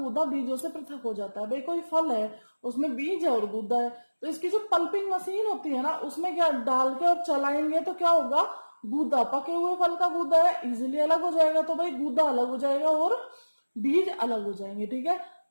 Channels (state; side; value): inverted; both; correlation -1.00